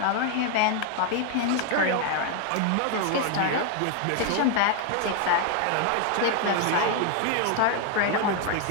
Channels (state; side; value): different; both; correlation 0.01